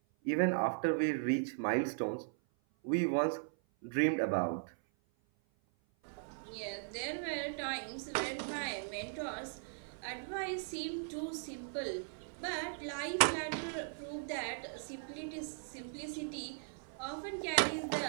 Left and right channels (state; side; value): silent; left; 52 dB below the other